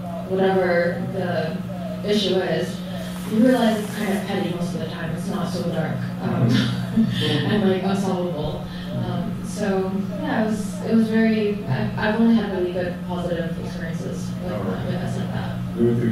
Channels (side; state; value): both; identical; correlation 1.00